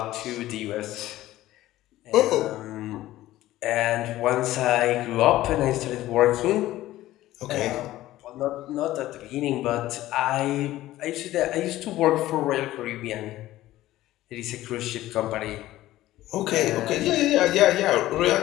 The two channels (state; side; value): quieter; right; 15.5 dB